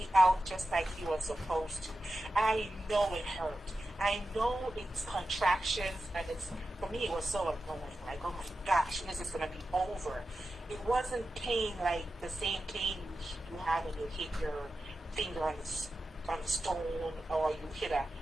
out just like he was supposed to. I know it hurt. I know it's contractions, and for me it was so annoying. Like, oh my gosh, when is this gonna be over? It wasn't pain like the same pain you have when you hit your finger on the stone, or you hit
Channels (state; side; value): normal; both; correlation 0.92